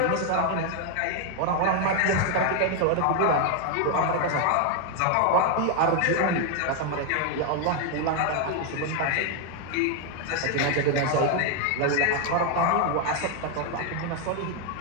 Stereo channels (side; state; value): both; different; correlation 0.01